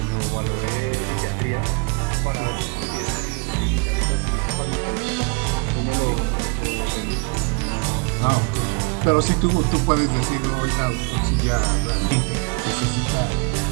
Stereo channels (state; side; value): quieter; left; 32.7 dB